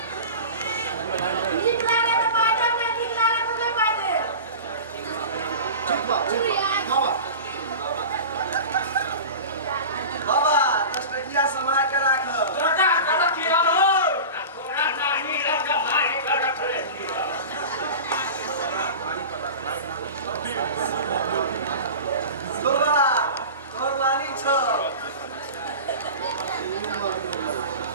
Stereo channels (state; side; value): inverted; both; correlation -0.32